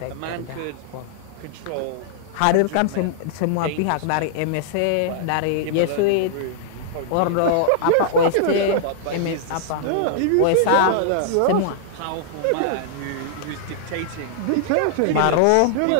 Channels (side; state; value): both; different; correlation -0.01